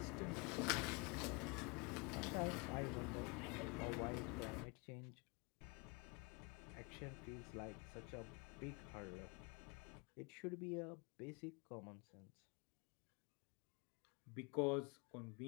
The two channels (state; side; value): quieter; right; 30.3 dB